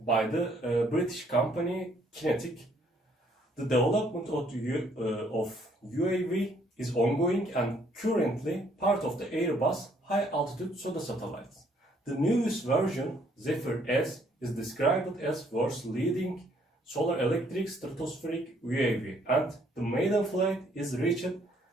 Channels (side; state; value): both; normal; correlation 0.66